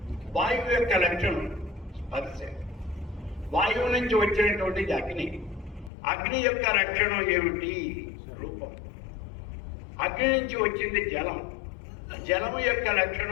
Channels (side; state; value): right; drops out; at 5.9 s